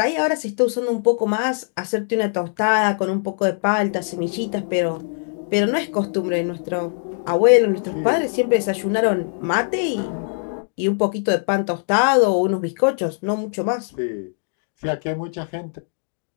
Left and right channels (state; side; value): silent; right; digital silence